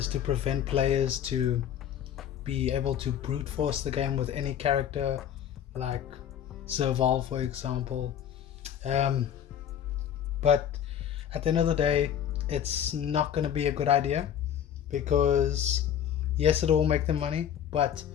to prevent players to be able to brute force the game with any character, like Serval for example. But at the end of the day, it's not going to be a good idea because yes, it will make them money, but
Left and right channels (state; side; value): quieter; right; 9.5 dB